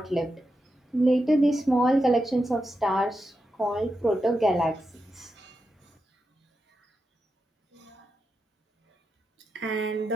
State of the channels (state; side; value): normal; both; correlation 0.88